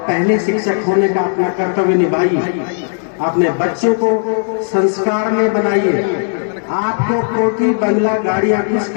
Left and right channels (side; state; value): right; silent; digital silence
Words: पहले शिक्षक होने का अपना कर्तव्य निभाइए। अपने बच्चों को संस्कार में बनाइए। आपको कोठी बंगला गाड़ियां कुछ